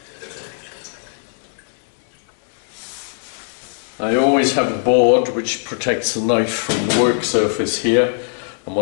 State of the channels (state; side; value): silent; right; digital silence